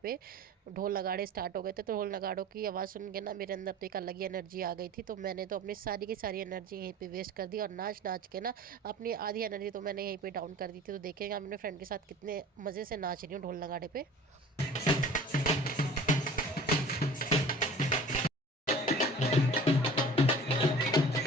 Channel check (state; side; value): normal; both; correlation 0.42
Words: पे ढोल नगाड़े स्टार्ट हो गए थे। तो ढोल नगाड़ों की आवाज़ सुन के ना मेरे अंदर तो एक अलग ही एनर्जी आ गई थी। तो मैंने तो अपनी सारी की सारी एनर्जी यहीं पे वेस्ट कर दी और नाच नाच के ना अपनी आधी एनर्जी तो मैंने यहीं पे डाउन कर दी थी। तो देखेंगे मैं अपने फ्रेंड के साथ कितने मज़े से नाच रही हूँ ढोल नगाड़े पे।